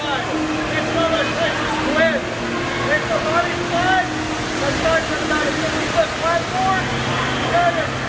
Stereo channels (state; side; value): identical; both; correlation 1.00